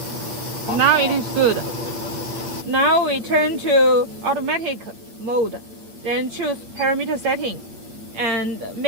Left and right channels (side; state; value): left; late; 9.1 ms